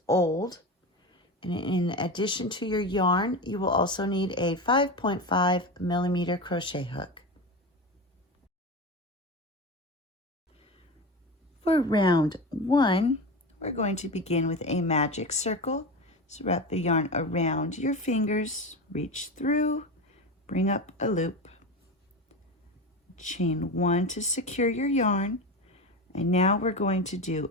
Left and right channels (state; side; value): normal; both; correlation 0.23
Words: old. And in addition to your yarn, you will also need a 5.5 millimeter crochet hook. For round 1, we're going to begin with a magic circle. So wrap the yarn around your fingers, reach through, bring up a loop, chain 1 to secure your yarn, and now we're going to